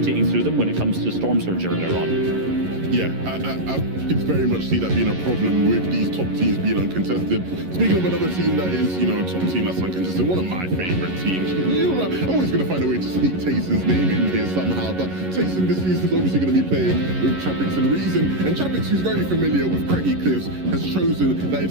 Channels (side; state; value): left; late; 11 ms